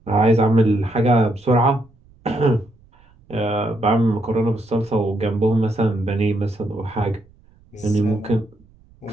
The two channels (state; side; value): noise; right; rumble, 30 dB below the sound